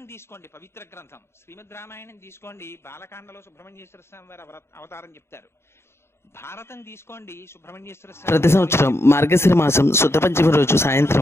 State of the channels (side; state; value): right; late; 0.12 ms